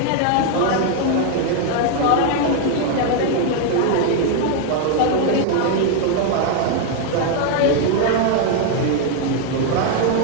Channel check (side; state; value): both; different; correlation 0.00